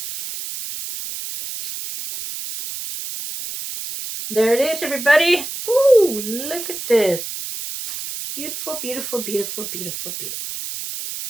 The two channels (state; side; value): noise; right; hiss, 7 dB below the sound